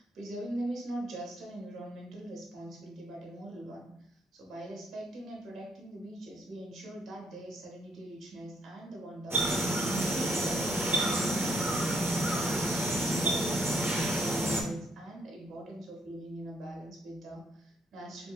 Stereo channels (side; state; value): both; normal; correlation 0.71